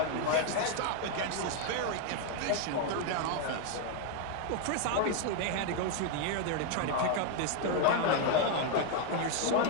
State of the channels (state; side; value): different; both; correlation 0.00